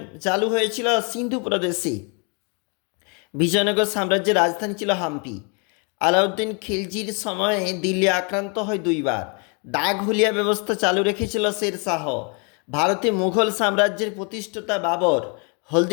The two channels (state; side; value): quieter; right; 35.8 dB